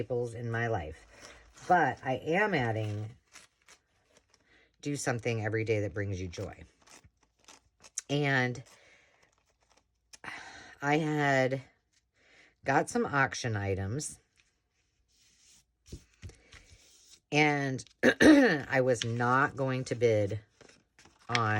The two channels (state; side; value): identical; both; correlation 1.00